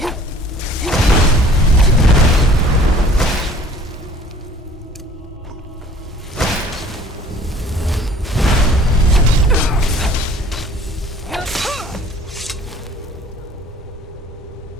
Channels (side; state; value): both; normal; correlation 0.52